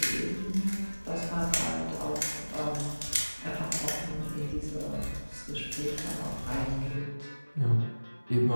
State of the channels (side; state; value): both; inverted; correlation -1.00